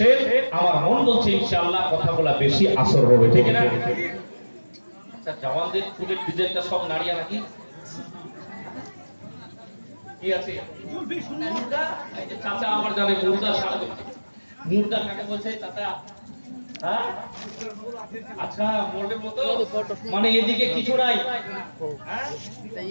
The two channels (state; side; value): inverted; both; correlation -1.00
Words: আমার মন বলছে ইনশাআল্লাহ কথা বলা বেশি আসর হবে, ঠিক না? আচ্ছা, জওয়ানদের চুলের ডিজাইনটা সব নাড়িয়া নাকি কি আছে? মুর্দা। এই যে চাচা আমার জানে মুর্দা সারা মুর্দা কাকে বলছে চাচা? হ্যাঁ, আচ্ছা, মোড়ের মতো মানে এদিকে কিছু নাই,